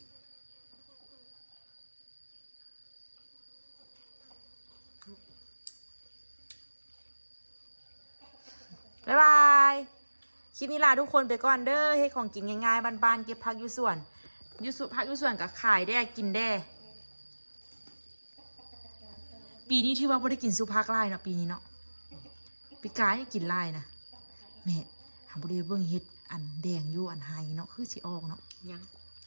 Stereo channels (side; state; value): both; inverted; correlation -1.00